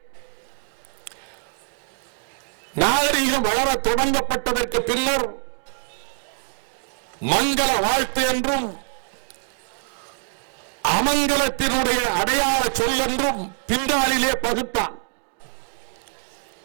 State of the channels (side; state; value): left; silent; digital silence